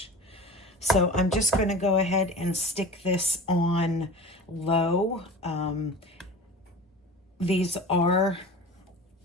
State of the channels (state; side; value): normal; both; correlation 0.36